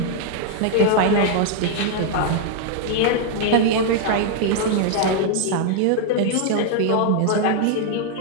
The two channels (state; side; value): different; both; correlation 0.00